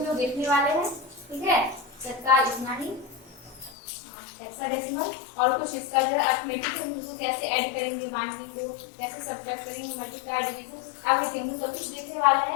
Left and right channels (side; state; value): right; drops out; at 3.8 s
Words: लोग देखने वाले हैं, ठीक है। तत्काल इतना ही हेक्साडेसिमल और कुछ इसका जो है अरिथमेटिक है, उसको कैसे ऐड करेंगे, बाइनरी को कैसे सब्ट्रैक्ट करेंगे, मल्टीप्लाई डिवीजन एवरीथिंग हम सब कुछ देखने वाले